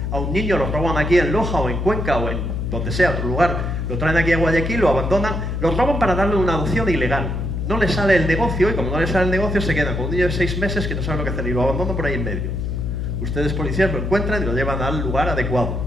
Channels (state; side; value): noise; left; hum, 2 dB below the sound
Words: A un niño lo roban aquí en Loja o en Cuenca o en donde sea, otro lugar, lo traen aquí a Guayaquil, lo abandonan, lo roban para darle una adopción ilegal. No le sale el negocio y como no le sale el negocio se quedan con un niño de 6 meses que no sabe lo que hacer y lo abandonan por ahí en medio. Ustedes policías lo encuentran y lo llevan al lugar adecuado.